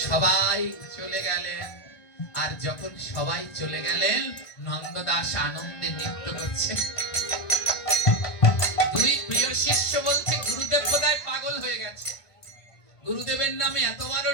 সবাই চলে গেলেন। আর যখন সবাই চলে গেলেন, নন্দদাস আনন্দে নৃত্য করছে। 2 প্রিয় শিষ্য বলছে গুরুদেব বোধহয় পাগল হয়ে গেছে, গুরুদেবের নামে এত বড়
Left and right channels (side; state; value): right; late; 1.5 ms